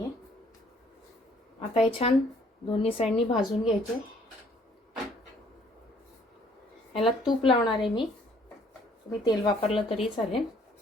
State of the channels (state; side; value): normal; both; correlation 0.61